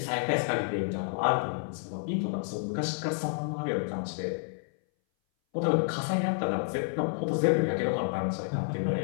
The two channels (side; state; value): right; silent; 58 dB below the other